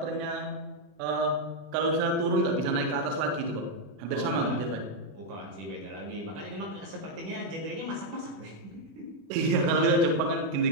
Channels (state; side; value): late; left; 20 ms